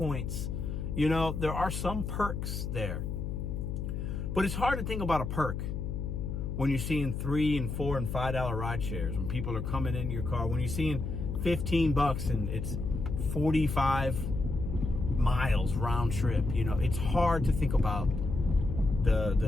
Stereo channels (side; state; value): left; noise; hum, 4 dB below the sound